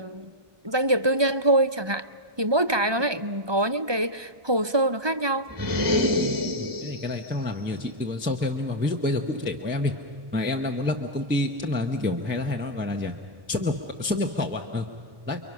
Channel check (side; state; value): left; late; 1.2 ms